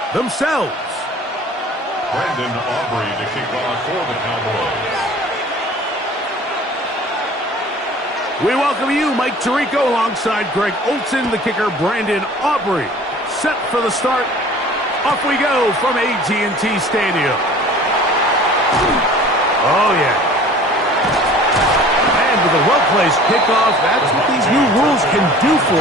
themselves. Brandon Aubrey to kick off for the Cowboys. We welcome you, Mike Tirico, alongside Greg Olson, the kicker, Brandon Aubrey. Set for the start. Off we go from AT&T Stadium. Oh, yeah. And with a well-placed kickoff, that's what these new rules can do for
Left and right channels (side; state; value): both; normal; correlation 0.46